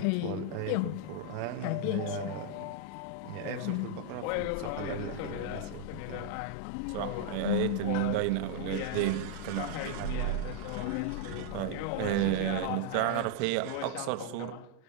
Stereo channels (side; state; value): both; different; correlation 0.00